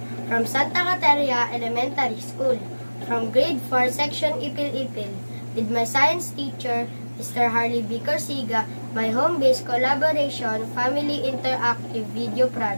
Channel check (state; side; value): inverted; both; correlation -1.00